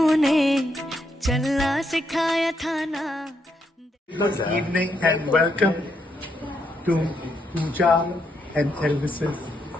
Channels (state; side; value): normal; both; correlation 0.78